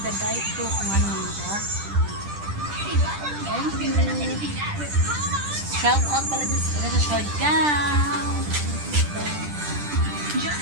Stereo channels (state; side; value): late; left; 10 ms